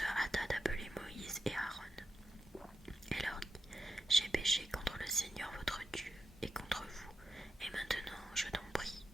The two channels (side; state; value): both; normal; correlation 0.89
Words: hâta d'appeler Moïse et Aaron. Et leur dit, « J'ai péché contre le Seigneur votre Dieu et contre vous, et maintenant je t'en prie,